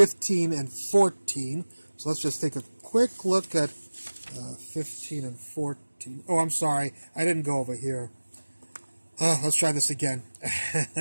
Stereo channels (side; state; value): both; inverted; correlation -1.00